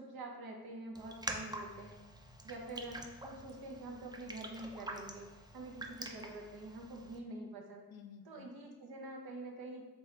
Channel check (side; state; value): both; normal; correlation 0.17